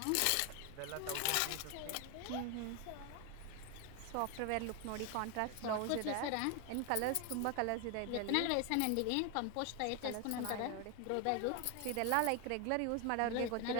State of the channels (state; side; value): different; both; correlation 0.01